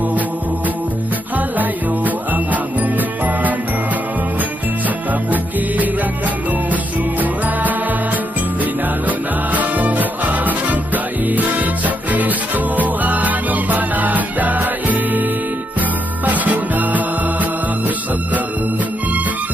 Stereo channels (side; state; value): both; normal; correlation 0.80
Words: halayo ang among panaw. Sa kabukiran kalungsuran, dinalo na mo ang kainit sa Kristo, anong panagdait. Pasko na usab karon,